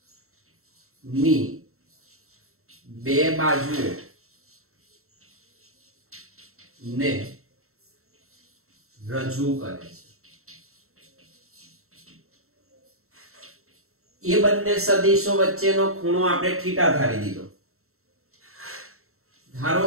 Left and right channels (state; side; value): late; left; 0.63 ms